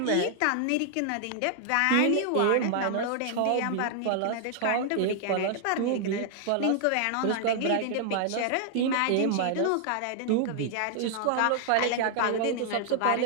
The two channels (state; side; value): different; both; correlation 0.00